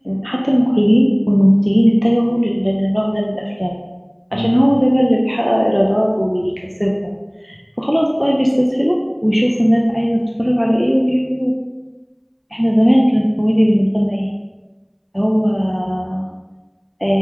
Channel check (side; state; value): both; identical; correlation 1.00